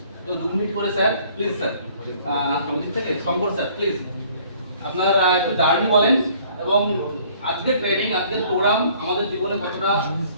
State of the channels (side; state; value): both; inverted; correlation -0.58